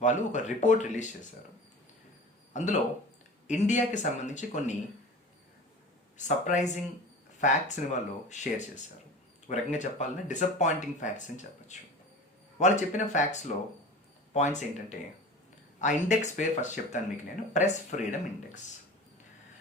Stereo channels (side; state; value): both; normal; correlation 0.36